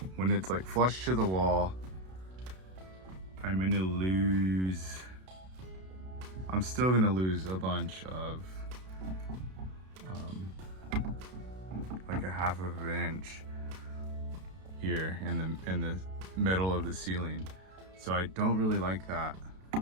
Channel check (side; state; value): left; late; 32 ms